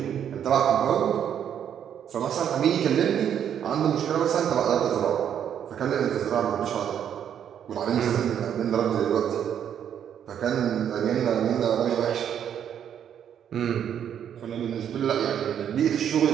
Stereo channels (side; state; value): left; quieter; 9.1 dB